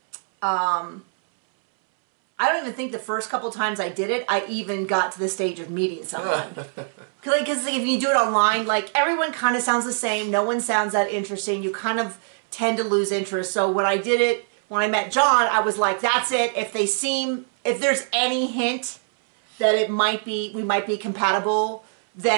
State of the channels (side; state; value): left; silent; 63 dB below the other